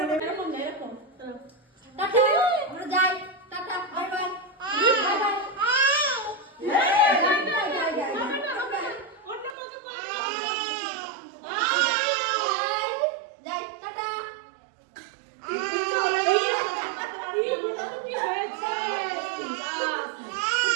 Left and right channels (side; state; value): left; drops out; at 9.5 s